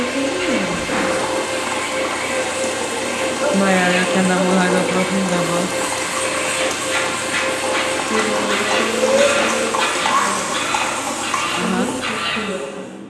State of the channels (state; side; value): identical; both; correlation 1.00